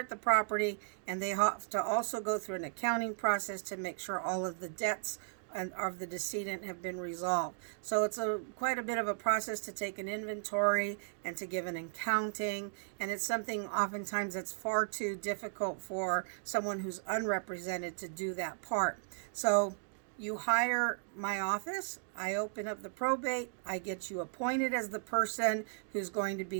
the property, and they have to also go through an accounting process to make sure all of the debts of the decedent have been resolved. So it's quite a bit of a process to take an inventory and to give an accounting, and it's something oftentimes that's far too difficult for someone who's unrepresented to do that part. So you hire my office, I open up the probate, I get you appointed as the person who's going to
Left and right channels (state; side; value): silent; left; digital silence